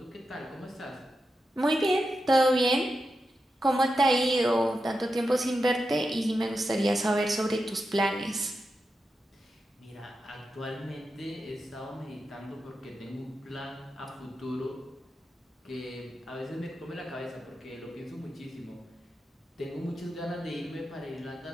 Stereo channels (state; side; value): normal; both; correlation 0.88